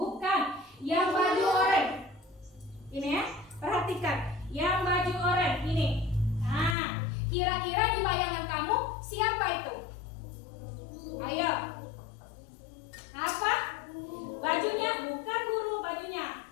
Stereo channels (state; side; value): drops out; right; at 6.8 s